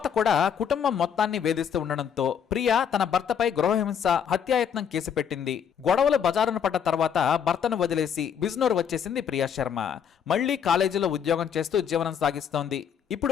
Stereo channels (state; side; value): quieter; right; 7.9 dB